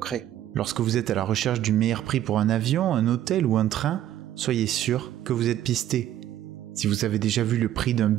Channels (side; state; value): left; quieter; 12.2 dB